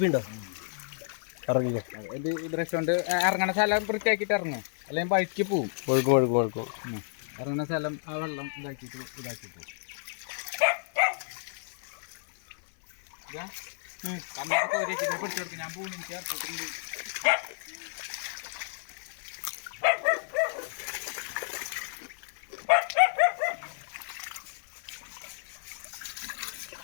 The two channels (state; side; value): silent; right; 57 dB below the other